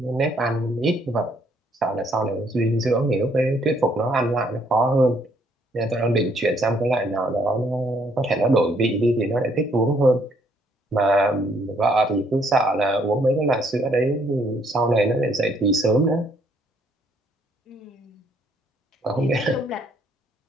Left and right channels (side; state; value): both; normal; correlation 0.68